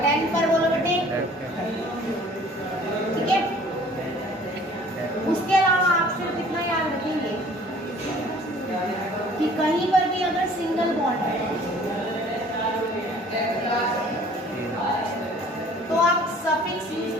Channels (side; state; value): both; normal; correlation 0.52